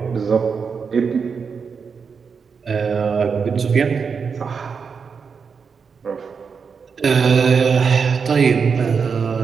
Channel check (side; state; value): left; quieter; 5.8 dB